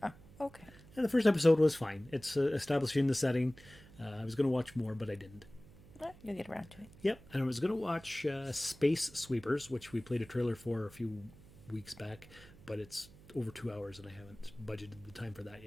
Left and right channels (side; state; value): right; noise; hum, 21 dB below the sound